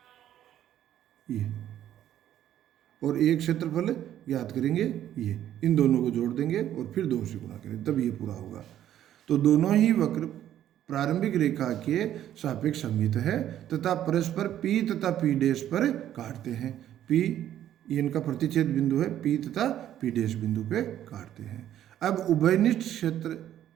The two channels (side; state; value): left; quieter; 11.5 dB